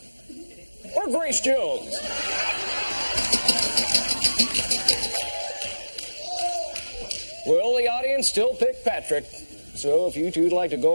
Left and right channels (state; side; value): inverted; both; correlation -1.00